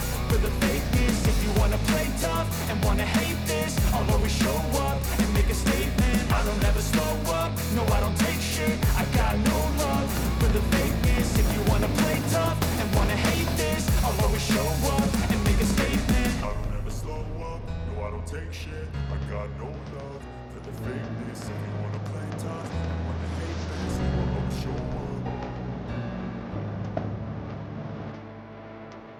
for the fakeness. If you wanna play tough and wanna hate this, I'll always show up and make a statement. I don't ever slow up, no I don't take shit, I got no love for the fakeness. If you wanna play tough and wanna hate this, I'll always show up and make a statement. I don't ever slow up, no I don't take shit, I got no love for the fakeness. If you wanna play tough and wanna hate this, I'll always show up.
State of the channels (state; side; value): identical; both; correlation 1.00